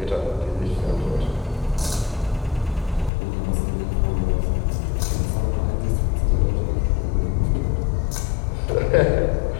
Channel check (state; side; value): drops out; right; at 3.1 s